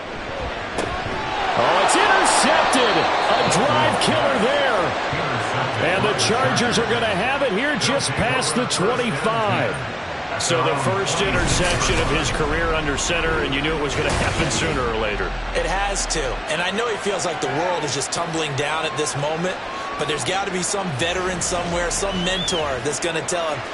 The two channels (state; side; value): identical; both; correlation 1.00